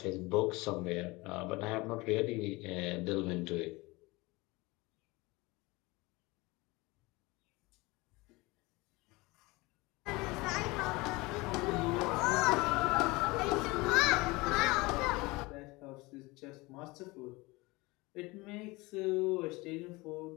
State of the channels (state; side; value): quieter; right; 23.2 dB